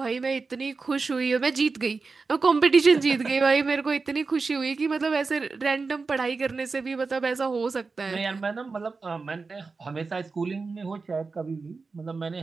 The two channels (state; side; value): quieter; left; 4.3 dB